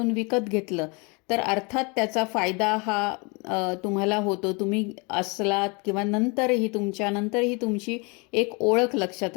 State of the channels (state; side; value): quieter; right; 30.2 dB